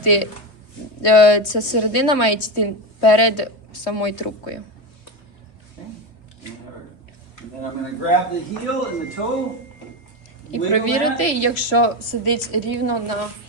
ця середина має йти перед самою трубкою. Okay? And then I'm going to grab the heel and the toe. І wiggle провірити, that. якщо сидить рівно на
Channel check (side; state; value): right; late; 3.1 ms